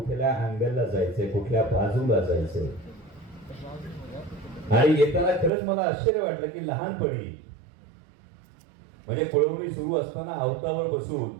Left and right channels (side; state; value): left; drops out; at 5.5 s